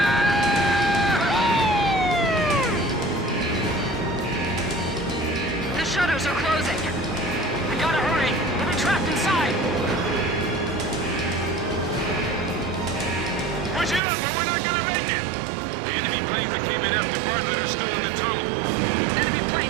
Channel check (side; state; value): left; drops out; at 14.0 s